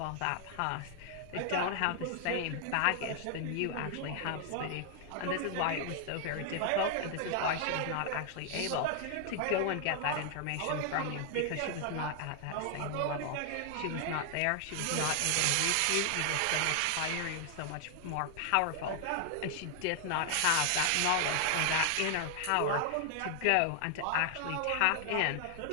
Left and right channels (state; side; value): different; both; correlation 0.00